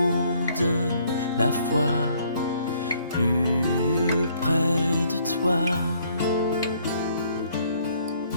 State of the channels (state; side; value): inverted; both; correlation -0.64